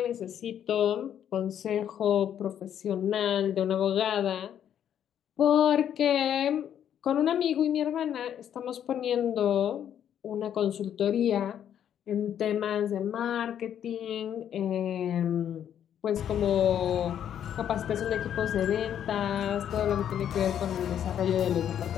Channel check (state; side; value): quieter; right; 9.6 dB